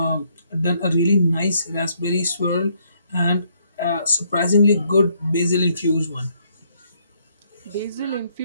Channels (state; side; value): inverted; both; correlation -0.70